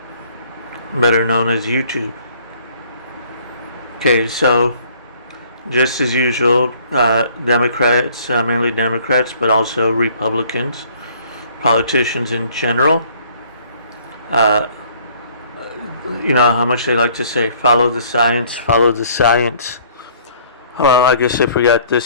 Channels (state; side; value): inverted; both; correlation -0.58